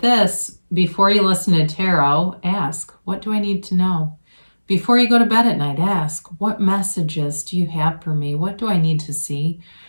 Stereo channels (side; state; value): both; inverted; correlation -1.00